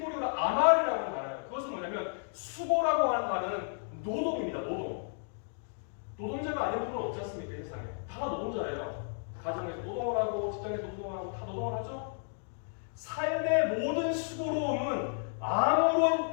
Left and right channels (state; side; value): silent; right; digital silence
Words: 아말이라고 하는 단어예요. 그것은 뭐냐면 수고라고 하는 단어는 노동입니다. 노동자가 아닌 분은 없지 않습니까? 이 세상에. 다 노동자예요. 가정에서 노동을 하고 직장에서 노동을 하고 다 노동을 하죠. 삶의 모든 수고로움은